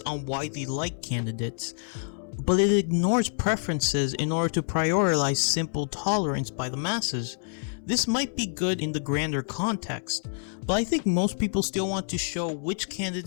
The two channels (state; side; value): silent; right; digital silence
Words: on widely liked candidates, but it ignores preferences in order to prioritize simple tolerance by the masses. This might be good in the grander context, but I think most people still want to show which